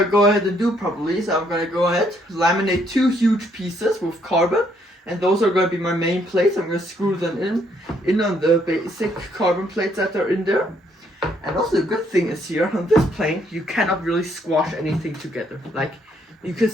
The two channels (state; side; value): normal; both; correlation 0.70